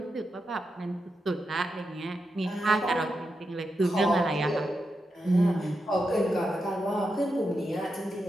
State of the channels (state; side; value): normal; both; correlation 0.87